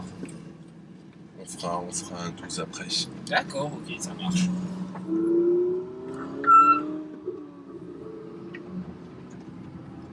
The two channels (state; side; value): identical; both; correlation 1.00